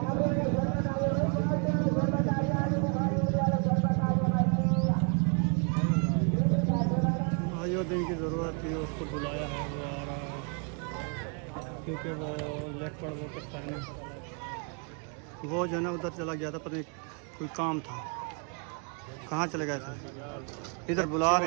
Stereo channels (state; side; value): quieter; left; 37.5 dB